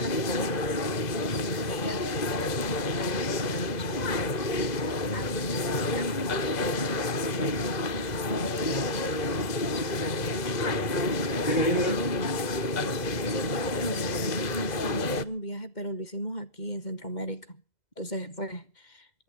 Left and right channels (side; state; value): right; late; 2.0 ms